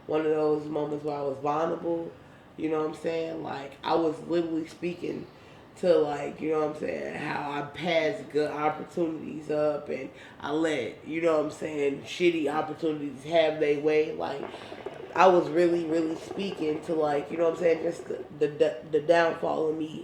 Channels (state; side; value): identical; both; correlation 1.00